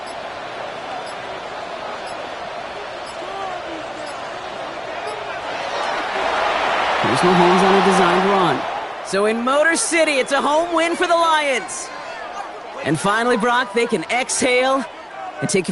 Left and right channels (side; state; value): both; identical; correlation 1.00